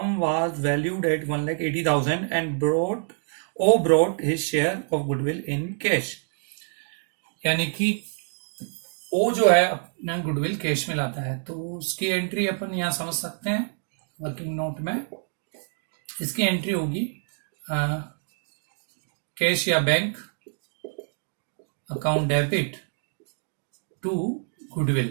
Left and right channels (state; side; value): silent; left; 58 dB below the other